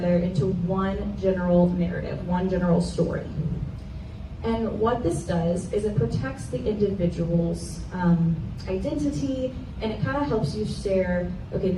into one general narrative, one general story. And what this does is it protects the individual's identity, and it kind of helps you share, okay,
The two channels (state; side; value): identical; both; correlation 1.00